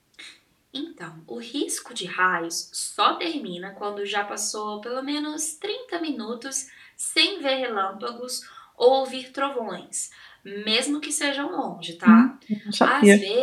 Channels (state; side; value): identical; both; correlation 1.00